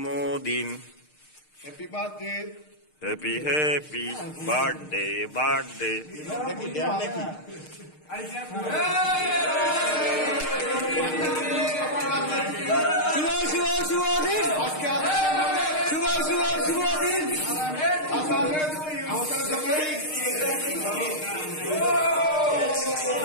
Happy birthday. Happy happy birthday birthday. শুভ শুভ শুভ দিন, শুভ শুভ শুভ দিন।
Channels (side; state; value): right; late; 6.5 ms